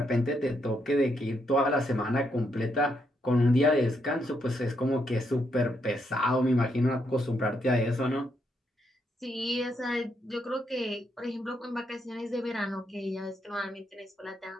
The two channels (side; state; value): both; normal; correlation 0.78